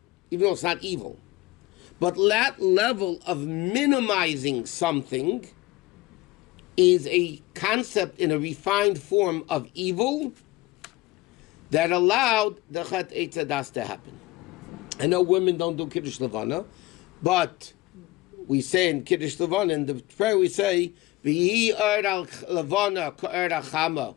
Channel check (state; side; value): quieter; right; 19.7 dB